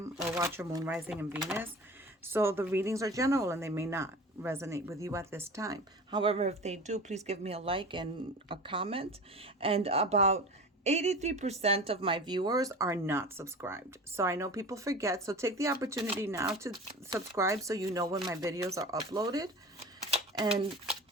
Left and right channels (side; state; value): both; normal; correlation 0.35